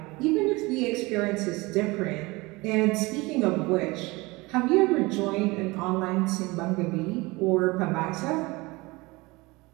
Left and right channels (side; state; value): left; quieter; 23.2 dB